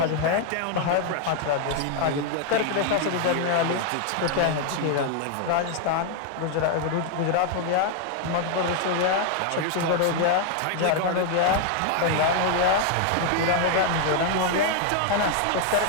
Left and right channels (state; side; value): different; both; correlation 0.00